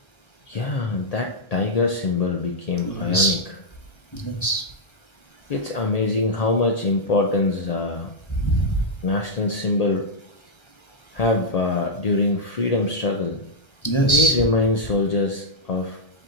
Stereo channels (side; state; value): right; late; 1.3 ms